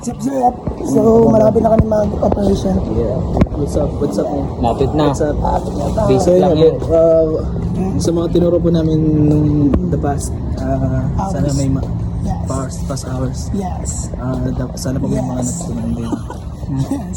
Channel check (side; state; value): both; identical; correlation 1.00